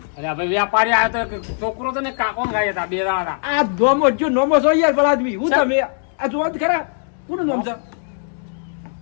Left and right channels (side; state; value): right; silent; digital silence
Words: અરે ભાઈ વ્યાપારી આવ્યો તો એક છોકરો હતો ને કાકો હંગાઈ હતા, બે જણા હતા. આ ધોમો જો નોમો છો યાર ભલા આદમી હું તમે આ જોવા જ ખરા કોનું નામ છે